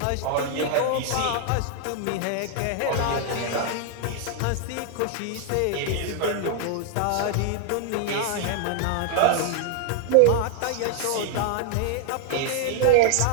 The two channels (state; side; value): different; both; correlation 0.00